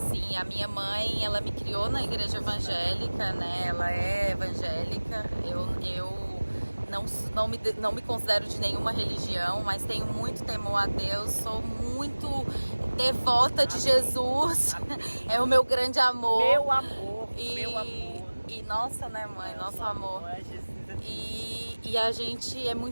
a minha mãe, ela me criou na igreja evangélica, né, ela é evangélica, eu não me considero de nenhuma religião, mas tenho muito temor a Deus, sou muito devota de Jesus, é o meu grande amor. Meu amor, meu amor. E nossa, né, mãe, nosso amor. E a gente é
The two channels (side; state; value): both; inverted; correlation -1.00